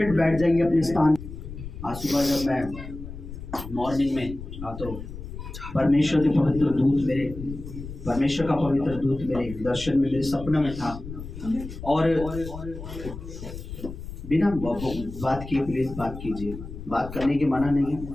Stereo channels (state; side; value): noise; left; rumble, 11 dB below the sound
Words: बैठ जाइए अपने स्थान। आज सुबह जब मैं मॉर्निंग में तो परमेश्वर के पवित्र दूत मेरे, परमेश्वर का पवित्र दूत मेरे दर्शन में, मेरे सपने में था और बिना बात किए प्लीज बात कीजिए, बात करने की मना नहीं है,